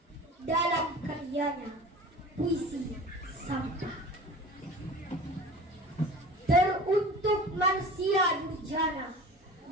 dalam karyanya Puisi Sampah. Teruntuk manusia durjana,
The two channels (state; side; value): normal; both; correlation 0.38